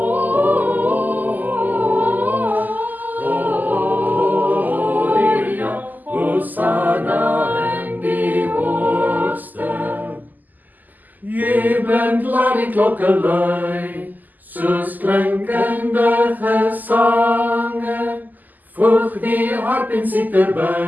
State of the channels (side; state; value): left; late; 0.084 ms